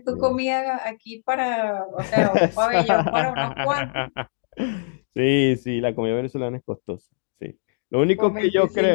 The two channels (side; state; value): right; silent; digital silence